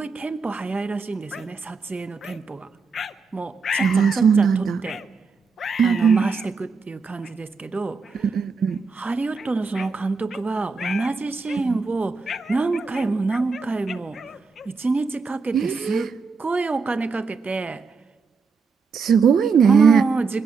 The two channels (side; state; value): left; quieter; 4.8 dB